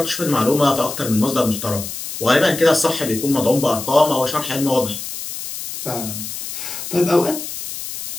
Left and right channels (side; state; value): left; noise; hiss, 8 dB below the sound